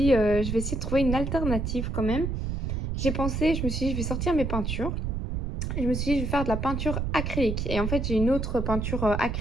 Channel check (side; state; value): right; noise; rumble, 2 dB below the sound